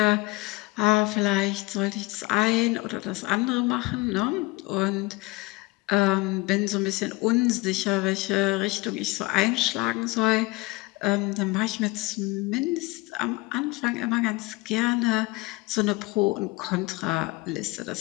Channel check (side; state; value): right; quieter; 23.2 dB